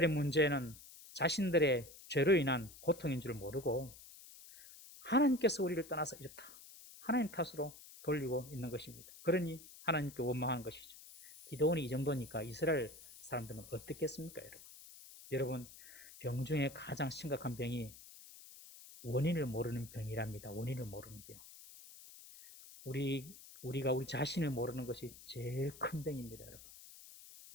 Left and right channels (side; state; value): left; noise; hiss, 18 dB below the sound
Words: 문제는 자신들의 죄로 인한 고통인 줄 모르고 하나님께서 우리를 떠나서 이렇다. 하나님 탓으로 돌리고 있는 것입니다. 그러니 하나님께 원망하는 것이죠. 기도원이 이 정도니까 이스라엘 사람들은 어떻겠습니까, 여러분? 여러분, 병 중에 가장 심각한 병이 원인을 모르는 병이랍니다. 원인을 모르는 병. 우리가 우리 자신을 모르는 것이 제일 큰 병입니다, 여러분.